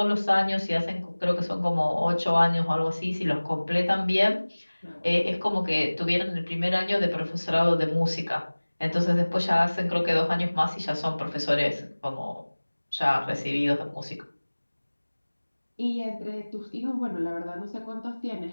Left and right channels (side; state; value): both; inverted; correlation -1.00